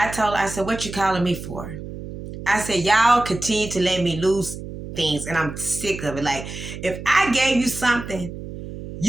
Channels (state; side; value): noise; right; hum, 10 dB below the sound